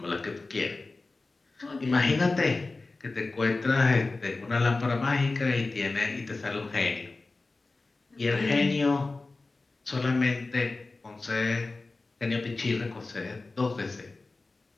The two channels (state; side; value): quieter; right; 3.5 dB